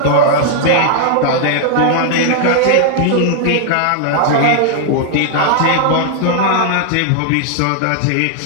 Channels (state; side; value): different; both; correlation -0.01